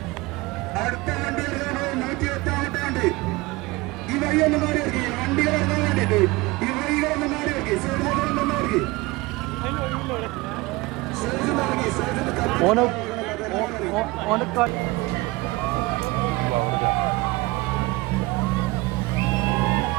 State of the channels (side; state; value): left; quieter; 22.0 dB